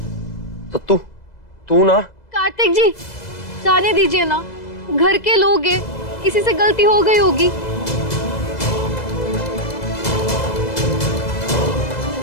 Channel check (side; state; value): right; late; 2.0 ms